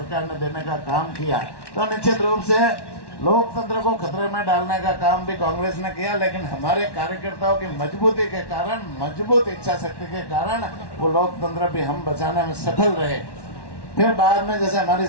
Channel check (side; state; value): right; late; 1.1 ms